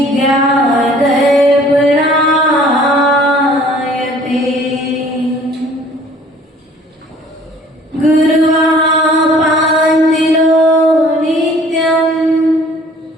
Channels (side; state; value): both; normal; correlation 0.53